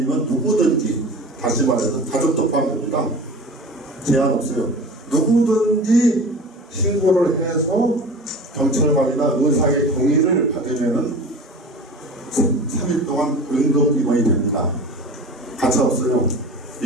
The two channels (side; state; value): both; normal; correlation 0.36